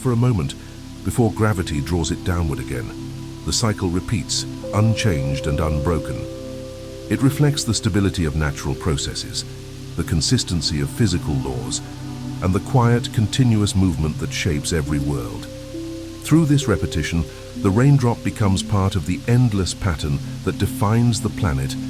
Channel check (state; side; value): identical; both; correlation 1.00